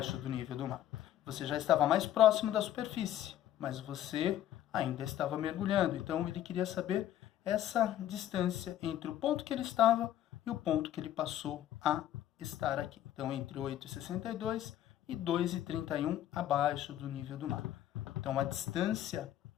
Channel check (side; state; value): right; quieter; 12.1 dB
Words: do nível do mar. Você já estava mais próximo da superfície, mas você ainda estava mergulhando. Então, ele queria saber essa distância entre o ponto que ele estava e o ponto que ele passou a estar aqui. Então, entre 8,62 e 2,31 abaixo do nível do mar. Então, a distância,